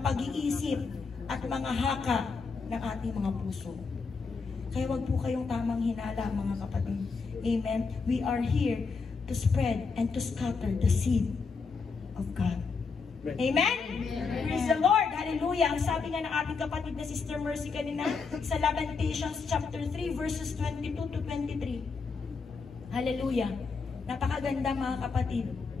pag-iisip at mga haka ng ating mga puso. Kaya wag po kayong tamang hinala, mga kapatid. Amen? We are here to spread and to scatter the seed of God. Amen? Praise the Lord. Hallelujah. Ang sabi nga ng ating kapatid na Sister Mercy kanina sa Lamentations chapter 3 verses 22 to 23. Hallelujah. Napakaganda, mga kapatid.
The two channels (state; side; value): quieter; right; 4.9 dB